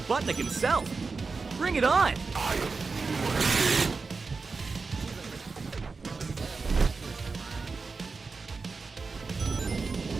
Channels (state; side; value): quieter; left; 4.4 dB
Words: Butnick himself. Bring it on! I am